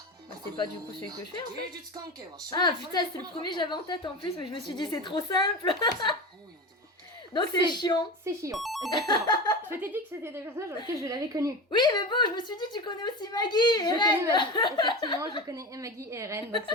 Bah, c'est pas du coup celui que je fais en fait. 芸術関係は奨 Ah 励さ putain, れて c'est こ le なかった premier que j'avais en tête en plus, mais je me suis dit c'est trop simple. 母さんに本を読んでもらってた Donc c'est chiant. C'est Chion, exactement. Je t'ai dit que c'était des personnages dans lesquels je l'avais connu. Oui, mais bon, je me suis dit, tu connais aussi Maggie et Je connais Ren. Maggie. Effectivement, je connais Maggie et Ren, donc c'est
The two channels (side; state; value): both; normal; correlation 0.27